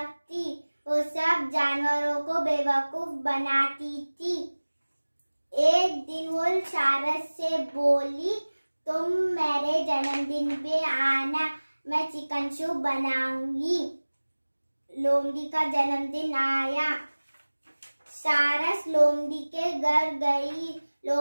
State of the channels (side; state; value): both; inverted; correlation -1.00